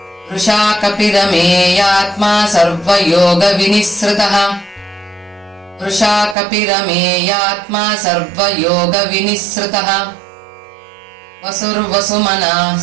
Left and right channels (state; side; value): drops out; left; at 6.4 s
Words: वृषा कपिरमेयात्मा सर्वयोगविनिःसृतः वृषा कपिरमेयात्मा सर्वयोगविनिःसृतः वसुर्वसुमनः